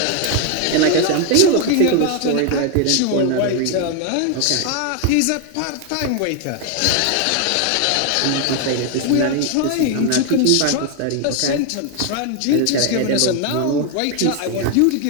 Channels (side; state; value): both; different; correlation 0.01